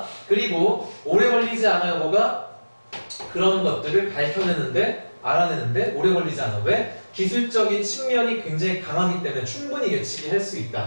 그리고 오래 걸리지 않아요. 뭐가? 그런 것들을 알아내는데 오래 걸리지 않아. 왜? 기술적인 측면이 굉장히 강하기 때문에 충분히 예측이 할 수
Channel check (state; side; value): inverted; both; correlation -1.00